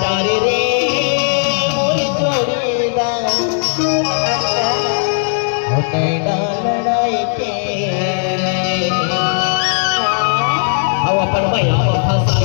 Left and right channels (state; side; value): silent; right; 65 dB below the other